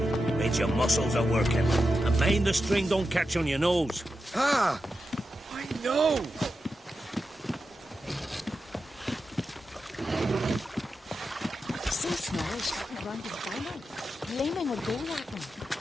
Means your muscles are working. And mind the string don't catch on your nose. Ah! I know! So small, shouting around his final. Gleaming would go at him.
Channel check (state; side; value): normal; both; correlation 0.89